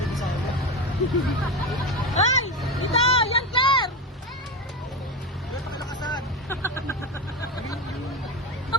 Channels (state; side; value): normal; both; correlation 0.18